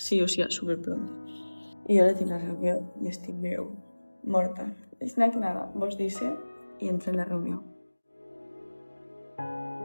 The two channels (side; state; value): both; inverted; correlation -1.00